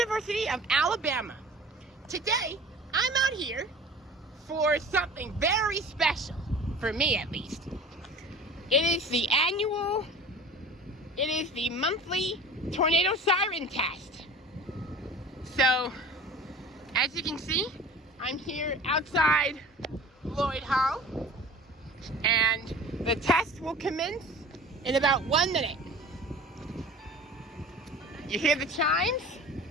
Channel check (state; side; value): normal; both; correlation 0.41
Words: of Alabama. Today, I'm out here for something very special, for me at least. It is the monthly tornado siren test. So, as you can see, I'm here outside Lloyd Hall, and the test will commence in about 1 minute. You hear the chimes?